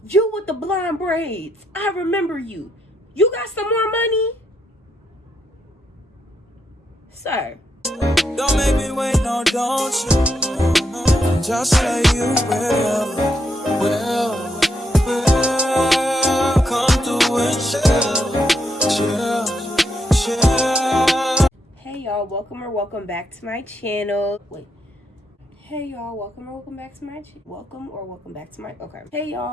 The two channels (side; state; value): both; normal; correlation 0.79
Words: you with the blonde braids, I remember you. You got some more money? Sir. Don't make me wait, no, don't you? Just say you will. Come through and chill. Hey y'all, welcome back to my channel. Wait. Hey y'all, welcome back to my